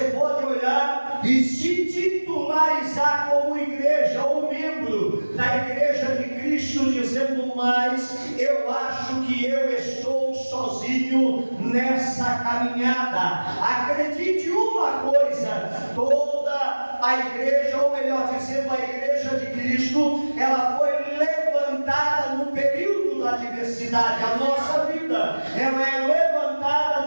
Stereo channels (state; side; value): inverted; both; correlation -1.00